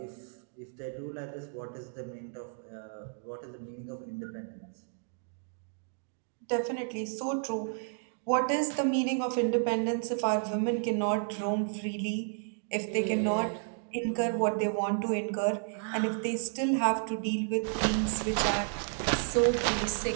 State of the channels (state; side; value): silent; left; 56 dB below the other